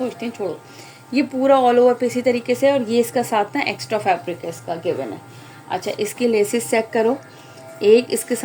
हैं छोड़ो। ये पूरा ऑल ओवर पे इसी तरीके से, और ये इसका साथ ना एक्स्ट्रा फैब्रिक है इसका गिवन है। अच्छा, इसकी लेसेस चेक करो, एक इसके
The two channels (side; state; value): both; identical; correlation 1.00